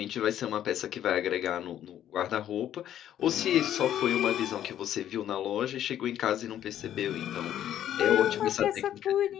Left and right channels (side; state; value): right; quieter; 11.1 dB